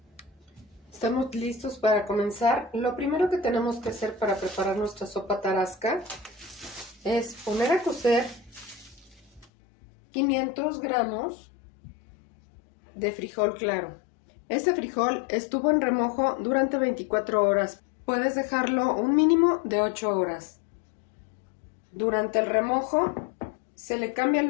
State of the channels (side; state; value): right; drops out; at 9.5 s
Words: Estamos listos para comenzar. Lo primero que tenemos que hacer para preparar nuestra sopa tarasca es poner a cocer 500 gramos de frijol claro. Este frijol estuvo en remojo durante 24 horas. Puedes dejarlo un mínimo de 8 horas. Durante el remojo se le cambia